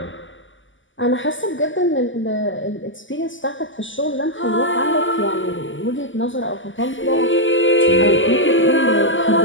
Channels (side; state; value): right; late; 0.56 ms